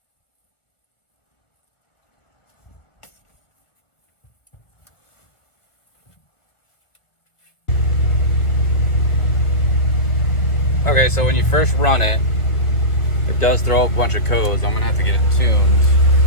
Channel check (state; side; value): late; right; 1.4 ms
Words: Okay, so when you first run it, it does throw up a bunch of codes. I'm gonna have to get it tuned,